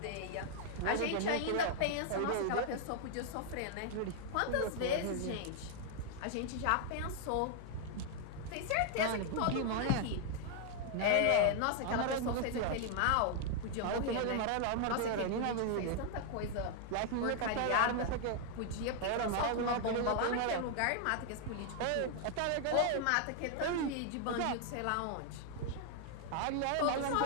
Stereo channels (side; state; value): both; different; correlation 0.00